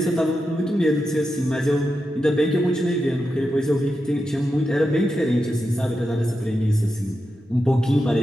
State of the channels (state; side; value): normal; both; correlation 0.88